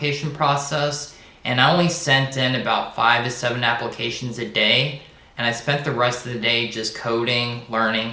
process, and I only sent in about 5 to 7 applications a day, and I spent the rest of the day just coding, learning,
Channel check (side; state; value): both; identical; correlation 1.00